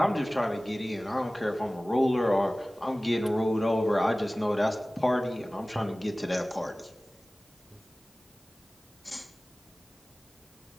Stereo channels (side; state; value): both; normal; correlation 0.98